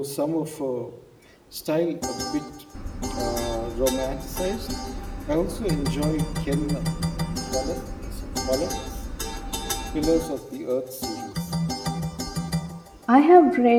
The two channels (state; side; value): identical; both; correlation 1.00